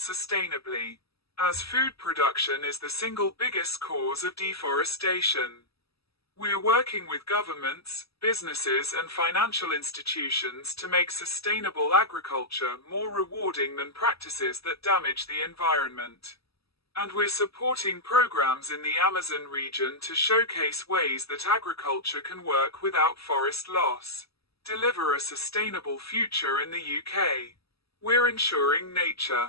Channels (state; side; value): late; right; 0.77 ms